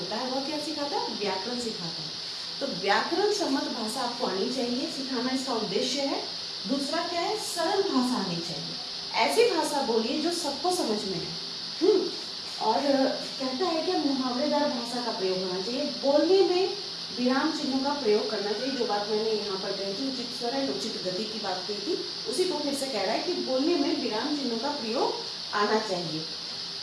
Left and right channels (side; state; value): both; identical; correlation 1.00